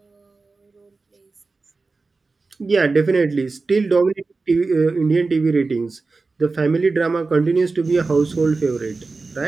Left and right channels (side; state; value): left; quieter; 3.9 dB